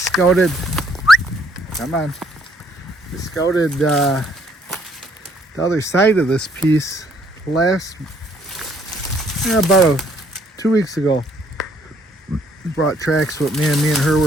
the other side of this piece about 2 weeks ago. Brought tracks with me and her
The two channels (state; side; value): normal; both; correlation 0.66